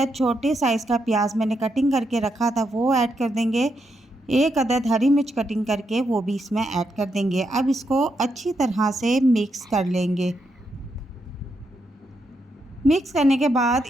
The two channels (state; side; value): normal; both; correlation 0.81